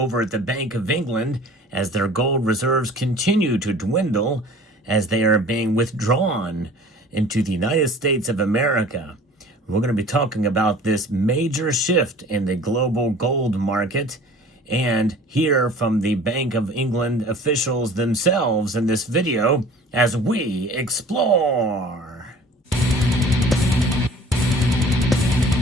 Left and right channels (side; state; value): both; normal; correlation 0.46